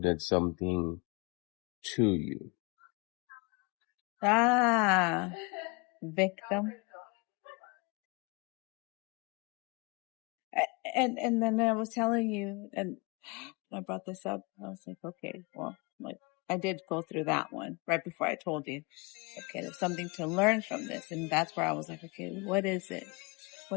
something to you. Ah, victim. And then I was telling you, and I brought this up. I was like, okay, well, like I did go through that one right before I told you, okay, there's something to learn from this. And that's where I was like, okay, what is it?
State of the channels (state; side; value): quieter; right; 29.3 dB